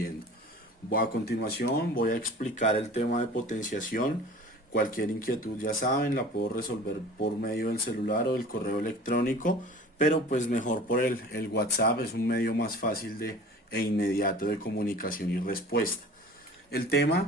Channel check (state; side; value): normal; both; correlation 0.43